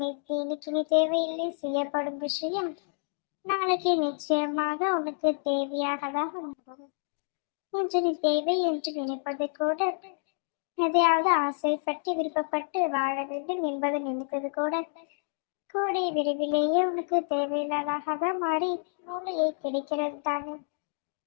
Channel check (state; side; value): silent; right; digital silence